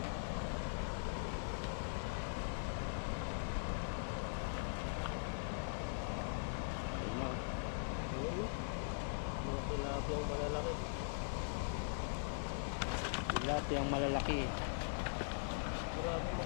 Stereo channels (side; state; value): right; silent; 50 dB below the other